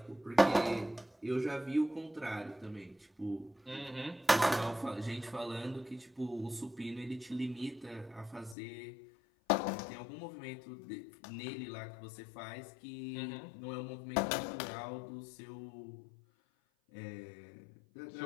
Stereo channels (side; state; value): right; drops out; at 8.6 s